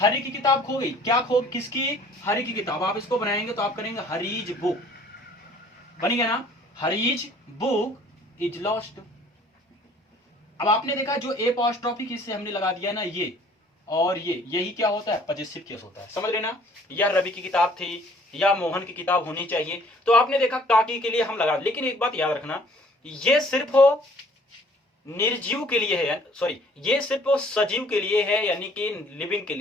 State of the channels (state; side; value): normal; both; correlation 0.56